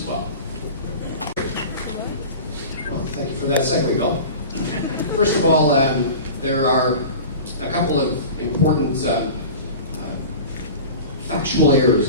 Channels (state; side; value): inverted; both; correlation -0.35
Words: well. Well, thank you for that segue, Bill. First of all, there are a couple of important factual errors